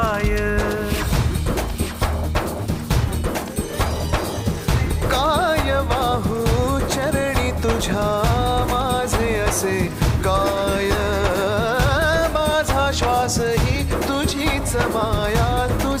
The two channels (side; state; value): both; identical; correlation 1.00